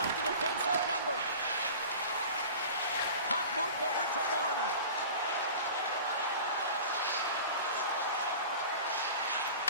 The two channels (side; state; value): both; inverted; correlation -0.38